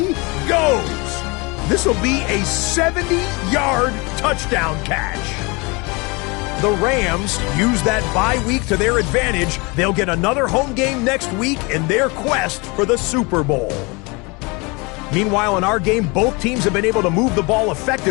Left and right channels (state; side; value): quieter; right; 27.6 dB